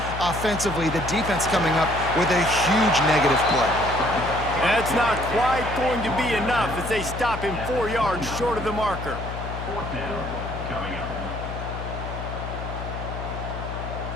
offensively. The defense coming up with a huge negative play. That's not quite going to be enough as they stop him 4 yards short of the marker. 4th down coming up.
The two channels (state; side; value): noise; left; hum, 7 dB below the sound